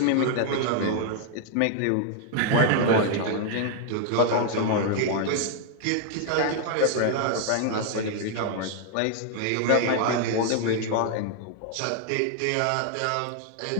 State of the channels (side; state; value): both; different; correlation 0.00